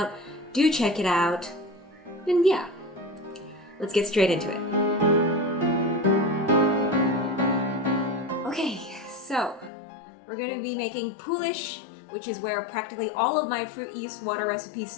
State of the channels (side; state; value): right; drops out; at 9.7 s